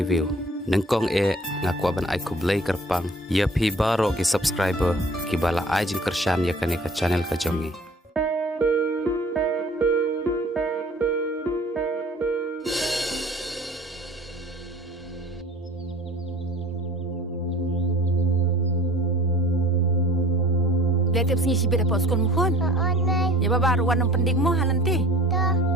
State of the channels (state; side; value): normal; both; correlation 0.47